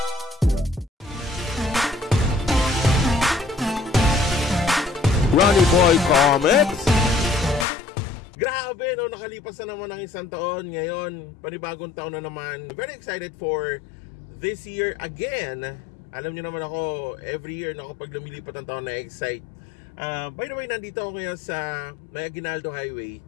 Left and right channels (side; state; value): right; drops out; at 7.7 s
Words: Ronnie Boy Comics. Grabe, no, nakalipas na naman ng isang taon. Ngayon, panibagong taon na naman. Very excited for this year again. Alam nyo naman ako, every year na kapag lumilipat ang taon na excite. By the way, nandito ako ngayon sa May Aguinaldo Highway.